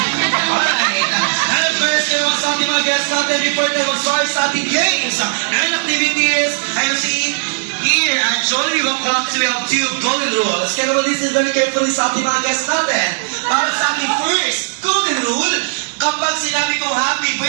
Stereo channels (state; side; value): silent; left; digital silence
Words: And of course, kayo sa ating mga guests natin before tayo mag-start sa ating games and activities. I see here at Jollibee Bangkok, we have 2 golden rules. Kaya naman listen very carefully sa ating mga guests natin. Para sa ating first golden rule, kapag sinabi kong happy